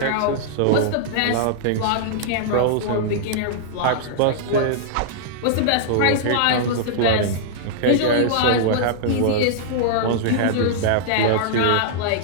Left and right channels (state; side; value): different; both; correlation -0.02